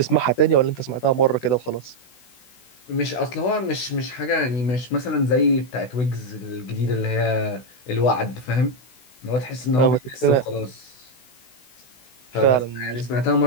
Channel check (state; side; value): late; right; 16 ms